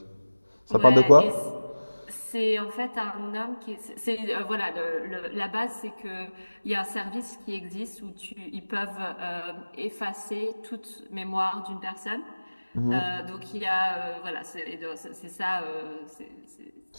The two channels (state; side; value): inverted; both; correlation -1.00